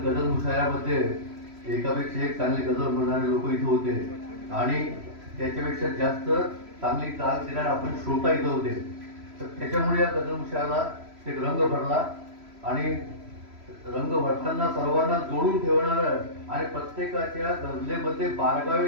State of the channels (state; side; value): late; left; 3.1 ms